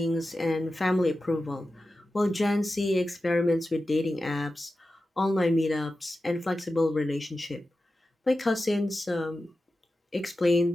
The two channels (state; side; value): normal; both; correlation 0.93